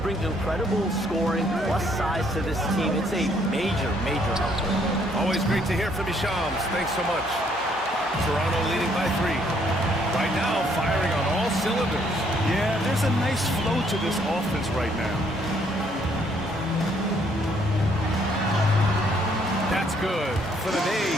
bring incredible scoring plus size to this team. It's a major, major help. Always great to hear from you, Shams. Thanks so much. Toronto leading by 3. Right now, firing on all cylinders. Yeah, there's a nice flow to this offense right now. That's good. For the day,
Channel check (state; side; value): normal; both; correlation 0.67